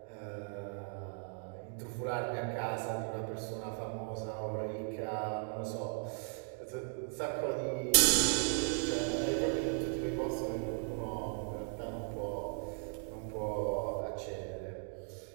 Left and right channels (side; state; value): left; silent; 53 dB below the other